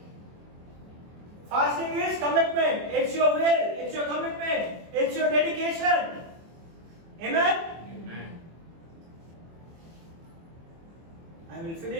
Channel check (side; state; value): left; late; 24 ms